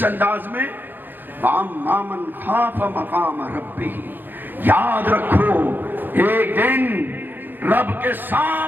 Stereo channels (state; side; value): late; left; 0.092 ms